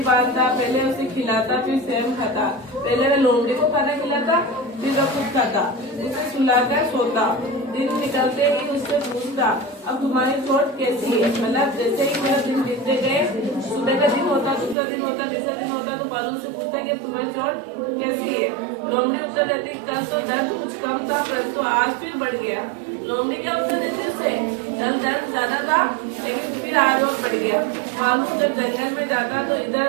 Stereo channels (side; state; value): left; drops out; at 14.8 s